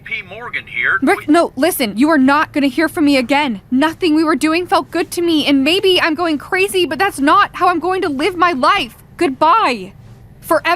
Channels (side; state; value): both; identical; correlation 1.00